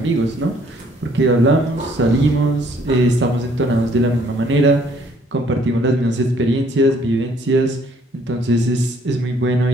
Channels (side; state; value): both; normal; correlation 0.62